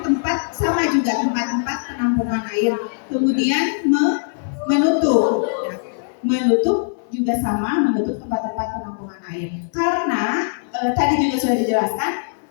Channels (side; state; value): right; silent; 61 dB below the other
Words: sama juga tempat-tempat penampungan air. Kemudian menutup. Menutup juga sama menutup tempat-tempat penampungan air. Karena tadi juga sudah dijelaskan